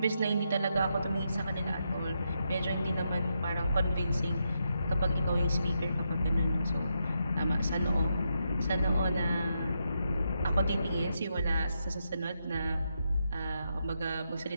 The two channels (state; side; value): inverted; both; correlation -0.83